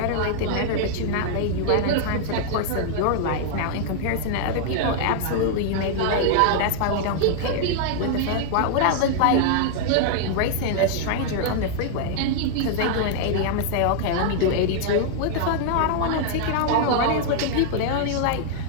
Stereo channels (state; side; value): different; both; correlation -0.01